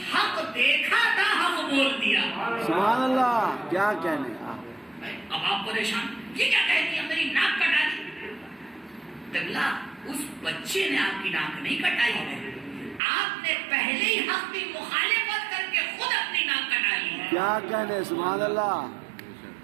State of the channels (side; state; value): left; drops out; at 13.0 s